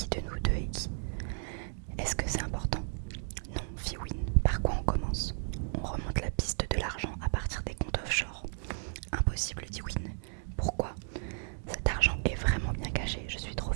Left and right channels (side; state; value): left; silent; 55 dB below the other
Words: de nous deux est qui? Est-ce que c'est important? Non, fit Win. Par quoi on commence? On remonte la piste de l'argent à partir des comptes offshore. Impossible, dit Win. Pourquoi? Cet argent est vraiment bien caché, je suis trop